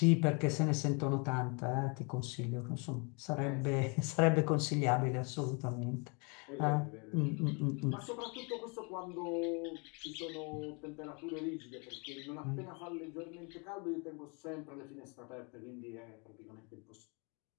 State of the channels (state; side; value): quieter; right; 33.4 dB